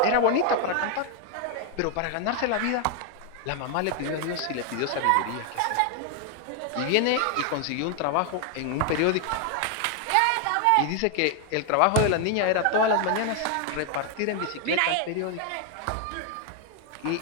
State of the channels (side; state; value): both; different; correlation 0.01